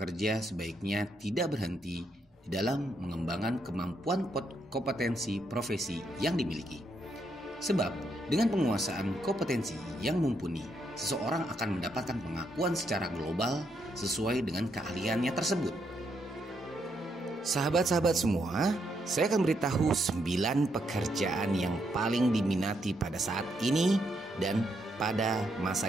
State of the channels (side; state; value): both; normal; correlation 0.77